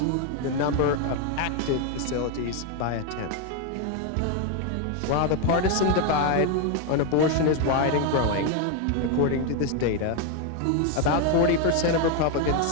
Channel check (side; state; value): both; different; correlation 0.01